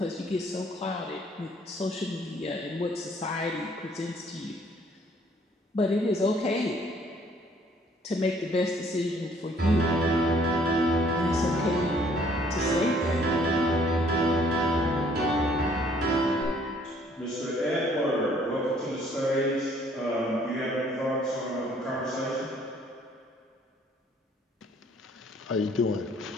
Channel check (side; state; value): both; normal; correlation 0.61